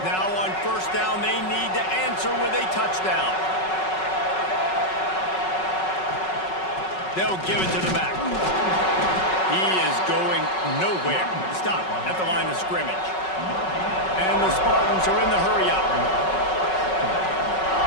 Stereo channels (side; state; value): right; late; 5.4 ms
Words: Now on 1st down, they need to answer with a touchdown. They'll give it to the back. He is going nowhere. Stop at the line of scrimmage. And the Spartans are in the hurry-up.